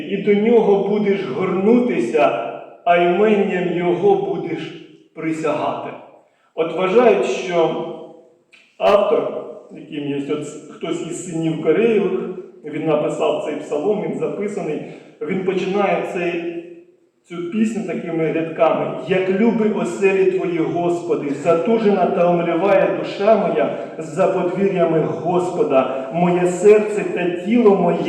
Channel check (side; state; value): both; identical; correlation 1.00